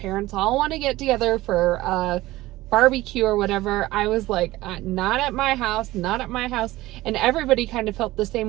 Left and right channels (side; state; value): left; quieter; 17.7 dB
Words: all want to get together for a barbecue or whatever. I was like, not at my house, not at my house. And everybody kind of felt the